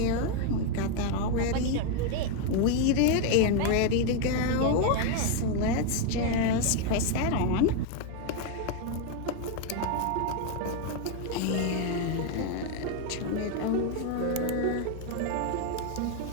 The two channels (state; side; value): different; both; correlation 0.01